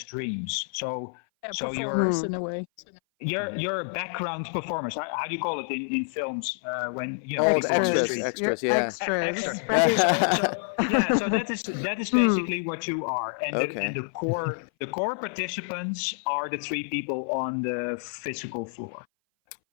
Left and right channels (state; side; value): silent; right; 57 dB below the other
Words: dreams. So performers in a way. You're background performers. How do you call it in films when extras, yeah. Extras. So that is basically what you are. And, and the core participants are the 3 people on the physical floor.